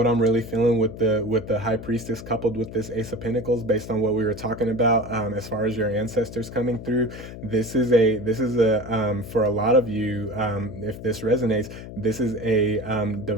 I'm really feeling with the High Priestess coupled with this Ace of Pentacles, based on what we were talking about, as far as your ancestors coming through. This is a for a lot of you, if this resonates, this is a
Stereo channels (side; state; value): left; noise; hum, 12 dB below the sound